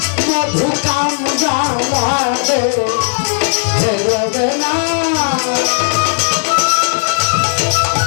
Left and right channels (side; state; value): right; silent; digital silence